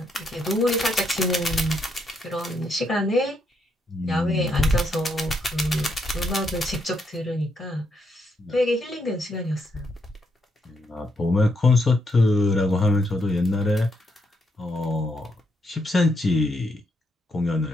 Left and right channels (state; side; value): normal; both; correlation 0.77